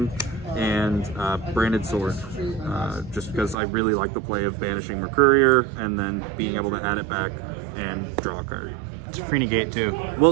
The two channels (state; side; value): drops out; left; at 3.6 s